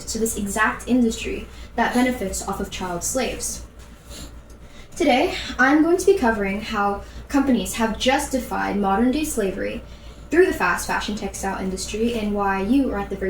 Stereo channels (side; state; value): both; identical; correlation 1.00